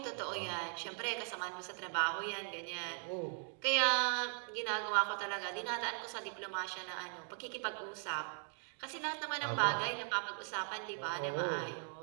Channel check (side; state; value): left; silent; 52 dB below the other